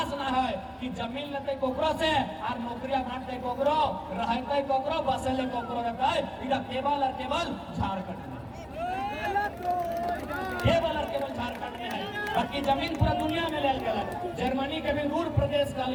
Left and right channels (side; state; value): both; identical; correlation 1.00